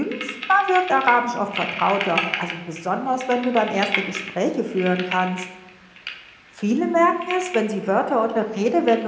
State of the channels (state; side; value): identical; both; correlation 1.00